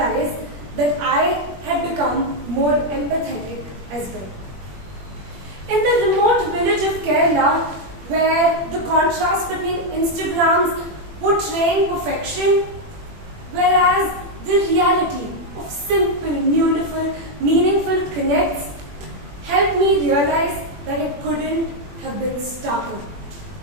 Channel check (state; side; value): late; left; 21 ms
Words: that I had become more empathetic as well. In the remote village of Kerala, where the contrast between Instagrams portraying perfection, whereas the reality of simple, beautiful, meaningful connects helped me realize that it couldn't have been starker.